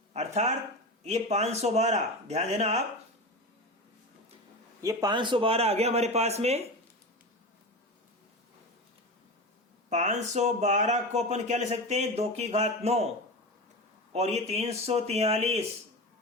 अर्थात ये 512, ध्यान देना आप, ये 512 आ गया हमारे पास में। 512 को अपन क्या ले सकते हैं? 2 की घात 9। और ये 343,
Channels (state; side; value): normal; both; correlation 0.25